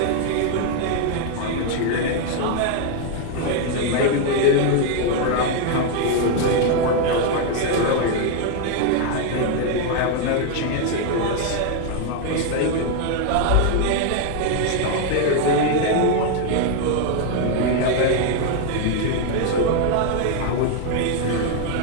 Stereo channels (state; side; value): different; both; correlation 0.00